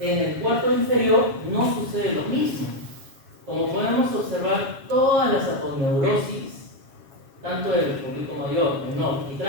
el cuarto inferior no sucede lo mismo. Como podemos observar, todas las aponeurosis, tanto del público mayor, menor y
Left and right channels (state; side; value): late; left; 7.3 ms